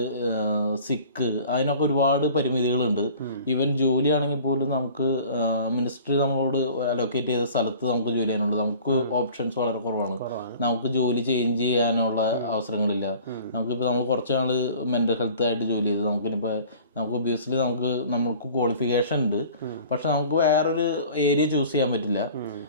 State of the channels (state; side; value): inverted; both; correlation -0.46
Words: സിക്ക്, അതിനൊക്കെ ഒരുപാട് പരിമിതികളുണ്ട്. ഈവൻ ജോലിയാണെങ്കിൽ പോലും നമുക്ക് മിനിസ്ട്രി നമ്മളോട് അലോക്കേറ്റ് ചെയ്ത സ്ഥലത്ത് നമുക്ക് ജോലി ചെയ്യാനുള്ളത്, നമുക്ക് ഓപ്ഷൻസ് വളരെ കുറവാണ്. നമുക്ക് ജോലി ചേഞ്ച് ചെയ്യാനുള്ള അവസരങ്ങളില്ല. നമുക്കിപ്പോൾ നമ്മൾ കുറച്ച് നാൾ മെൻ്റൽ ഹെൽത്ത് ആയിട്ട് ജോലി ചെയ്ത് നമുക്ക് ഒബ്വിയസ്ലി നമുക്ക് ക്വാളിഫിക്കേഷൻ ഉണ്ട്, പക്ഷെ നമുക്ക് വേറൊരു ഏരിയ ചൂസ് ചെയ്യാൻ പറ്റില്ല.